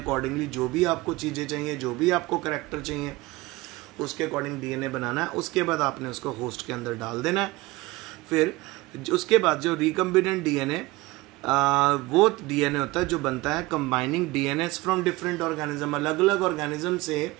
जो भी आपको चीज़ें चाहिए, जो भी आपको करैक्टर चाहिए, उसके अकॉर्डिंग डीएनए बनाना है। उसके बाद आपने उसको होस्ट के अंदर डाल देना है। फिर उसके बाद जो रिकम्बिनेंट डीएनए वो डीएनए होता है जो बनता है combining DNS from different organism, अलग अलग ऑर्गेनिज्म से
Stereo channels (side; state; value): left; quieter; 20.8 dB